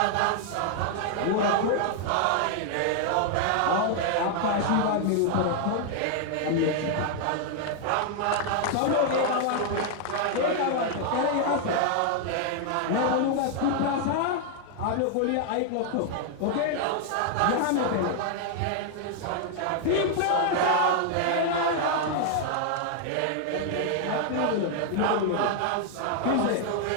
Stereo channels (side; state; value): both; different; correlation 0.00